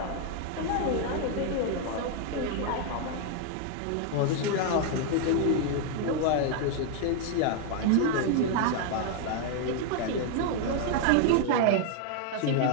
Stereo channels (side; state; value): both; different; correlation 0.00